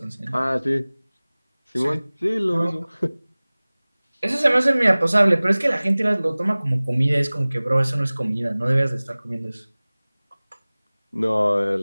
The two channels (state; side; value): inverted; both; correlation -0.99